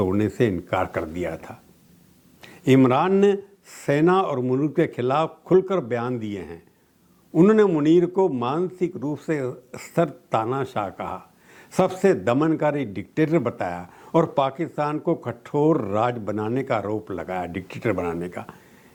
से इनकार कर दिया था। इमरान ने सेना और मुल्क के खिलाफ खुलकर बयान दिए हैं। उन्होंने मुनीर को मानसिक रूप से स्तर तानाशाह कहा, सबसे दमनकारी डिक्टेटर बताया और पाकिस्तान को कठोर राज बनाने का आरोप लगाया, डिक्टेटर बनाने का।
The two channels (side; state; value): both; identical; correlation 1.00